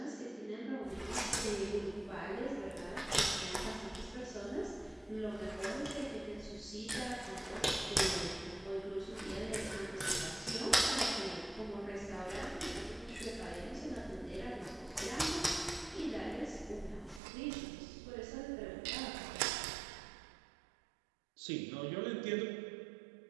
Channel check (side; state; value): left; drops out; at 17.2 s